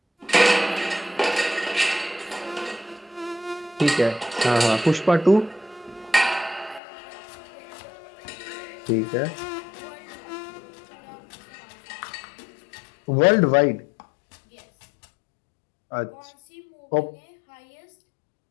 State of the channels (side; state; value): right; drops out; at 6.8 s